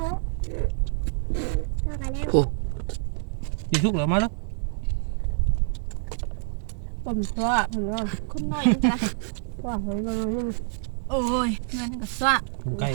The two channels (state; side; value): silent; left; digital silence